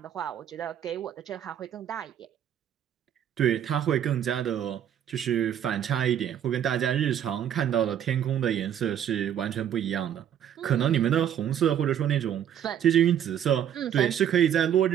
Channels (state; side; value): quieter; left; 9.8 dB